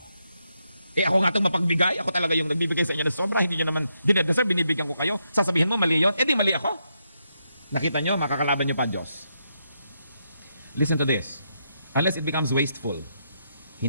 Ako nga itong mapagbigay, ako talaga yung nagbibigay sa inyo ng sobra, hindi nyo naman dinedeserve, binibigyan ko kayo. Sasabihin mo, mali yun? Di mali ako. Nakita nyo, makakalaban nyo pa Diyos. Listen to this. Unless it becomes wasteful,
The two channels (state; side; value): inverted; both; correlation -0.81